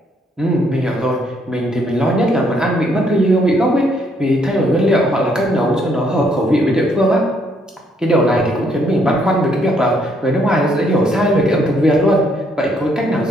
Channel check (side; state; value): both; normal; correlation 0.70